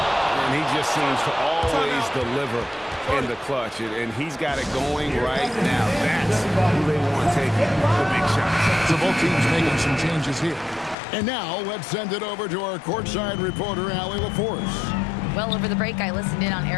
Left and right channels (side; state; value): right; drops out; at 11.0 s